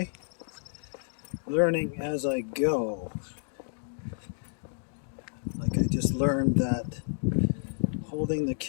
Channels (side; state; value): right; silent; digital silence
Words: learning as I go. Like I just learned that holding the